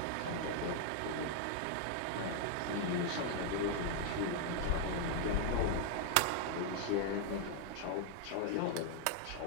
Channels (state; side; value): different; both; correlation 0.00